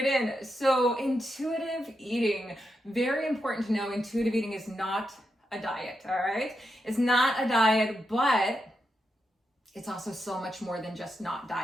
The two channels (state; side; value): normal; both; correlation 0.85